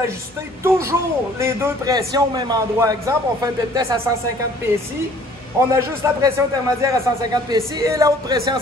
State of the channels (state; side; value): normal; both; correlation 0.54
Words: toujours les 2 pressions au même endroit. Exemple, on fait un PEP test à 150 PSI, on ajuste la pression intermédiaire à 150 PSI et la haute pression à